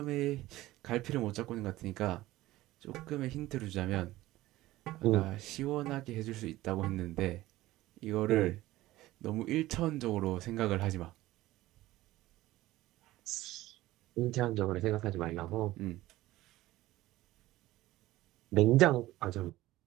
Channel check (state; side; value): quieter; left; 16.9 dB